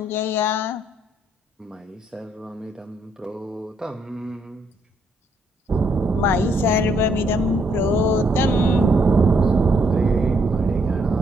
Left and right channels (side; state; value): both; normal; correlation 0.72